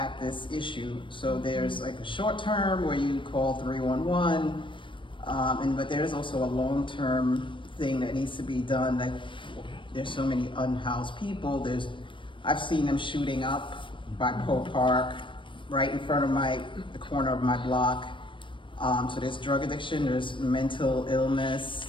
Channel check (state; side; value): late; right; 0.24 ms